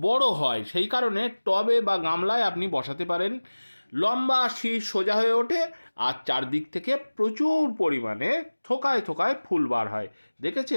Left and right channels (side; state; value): both; inverted; correlation -1.00